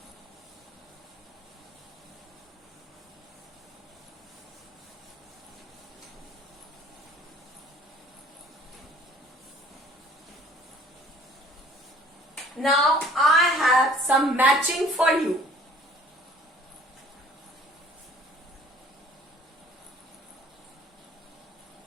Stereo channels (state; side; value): normal; both; correlation 0.53